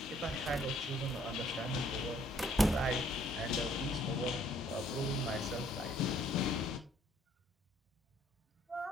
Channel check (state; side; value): normal; both; correlation 0.63